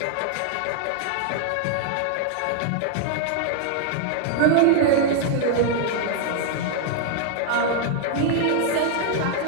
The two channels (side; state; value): both; different; correlation -0.01